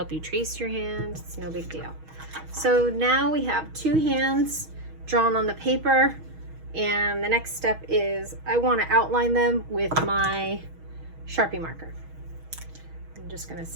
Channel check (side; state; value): left; late; 6.3 ms